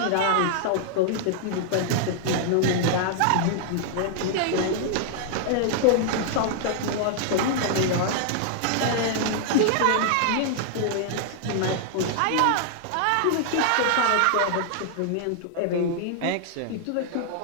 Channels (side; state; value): both; different; correlation -0.01